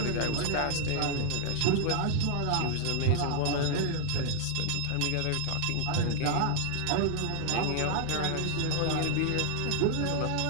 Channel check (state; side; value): different; both; correlation 0.00